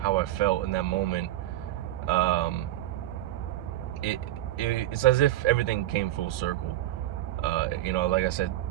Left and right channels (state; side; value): quieter; left; 14.5 dB